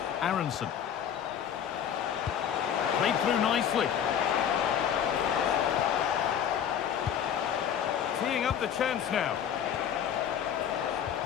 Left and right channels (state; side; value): quieter; right; 8.9 dB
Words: Aronson. Played through nicely. Teeing up the chance now.